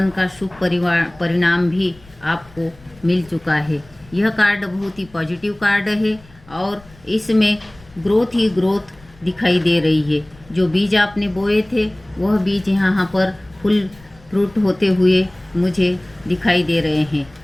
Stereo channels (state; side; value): noise; left; rumble, 26 dB below the sound